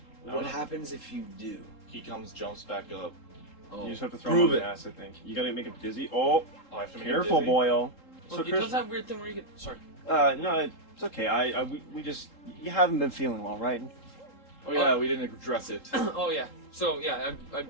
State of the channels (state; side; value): late; right; 3.8 ms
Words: What happens if you do? He jumps back up. Oh. You just have to throw Prove him on it. the ass, I think. You gotta make him dizzy. Oh, Oh, I have to make him careful, dizzy. boyo. Look, he Chris, does that weird thing where you get. Sorry. no, it's okay. We just, you haven't been feeling well, right? Oh yeah, we didn't address it. Oh yeah. So yeah,